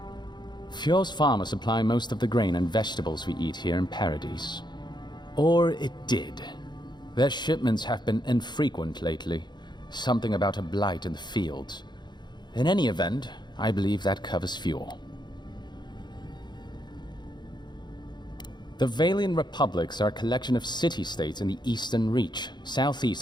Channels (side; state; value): right; late; 0.21 ms